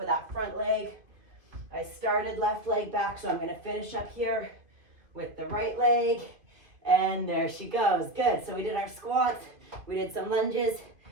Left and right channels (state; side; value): late; left; 2.5 ms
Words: that front leg. I started left leg back, so I'm going to finish up here with the right leg, and there she goes. Good. So we did our squats, we did some lunges.